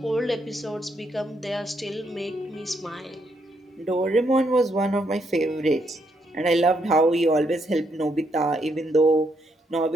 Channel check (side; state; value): both; normal; correlation 0.76